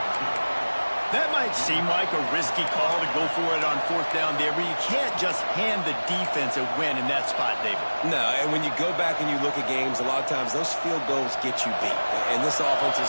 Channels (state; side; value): inverted; both; correlation -1.00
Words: That might seem like a risky call to go for it on 4th down there, but you can't just hand the defense a win in that spot, David. No, and when you go back and you look at games, a lot of times those field goals get you beat. And this offense